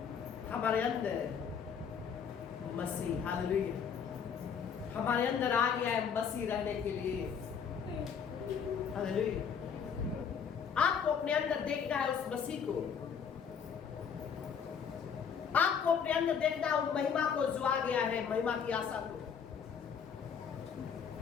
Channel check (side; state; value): right; quieter; 7.0 dB